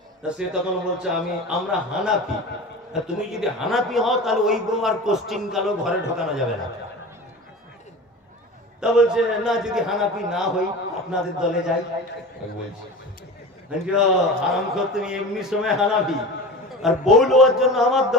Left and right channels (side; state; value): both; normal; correlation 0.33